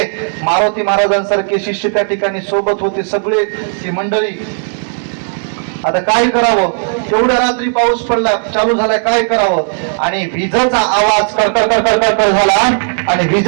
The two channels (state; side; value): silent; left; digital silence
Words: मारुती महाराजांसारखे शिष्य त्या ठिकाणी सोबत होते, सगळे ती मंडळी. आता काय करावं, तेवढ्या रात्री पाऊस पडला, चालू झालाय, काय करावं. आणि विजेचा आवाज कडकड कडकड कडकड झाला आणि